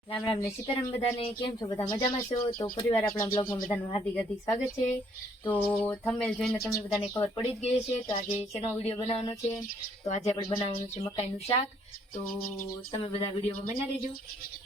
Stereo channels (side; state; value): both; normal; correlation 0.66